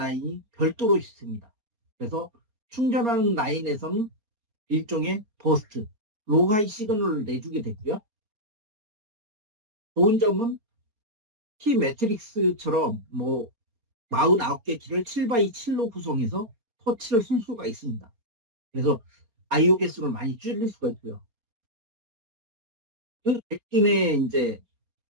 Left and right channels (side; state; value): left; late; 4.3 ms